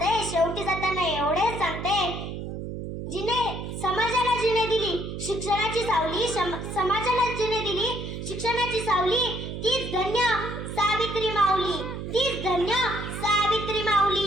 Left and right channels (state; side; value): noise; right; hum, 7 dB below the sound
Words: समाजाला जिने दिली शिक्षणाची सावली, समाजाला जिने दिली शिक्षणाची सावली, तीच धन्य सावित्री माऊली, तीच धन्य सावित्री